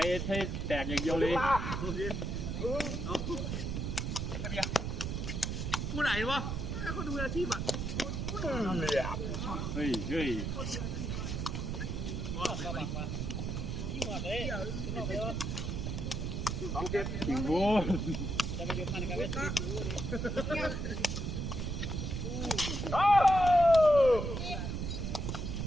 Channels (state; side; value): noise; right; rumble, 2 dB below the sound